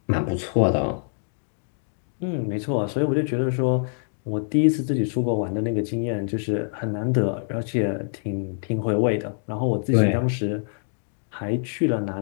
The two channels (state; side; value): silent; right; digital silence